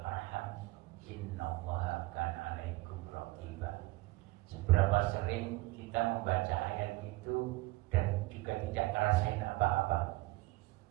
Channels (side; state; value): left; quieter; 20.7 dB